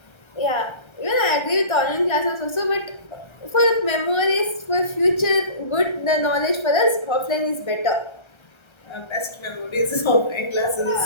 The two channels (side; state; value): right; late; 1.3 ms